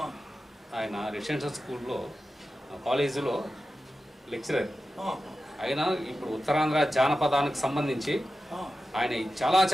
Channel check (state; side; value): normal; both; correlation 0.93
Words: ఆయన రెసిడెన్షియల్ స్కూల్లో కాలేజీలో లెక్చరర్. ఆయన ఇప్పుడు ఉత్తరాంధ్ర జానపదానికి సంబంధించి ఆయన